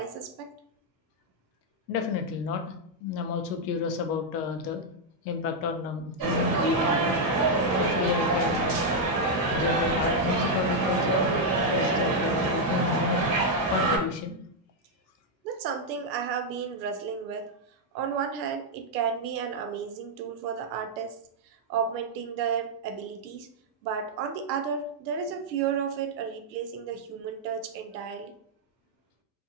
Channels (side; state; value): both; normal; correlation -0.02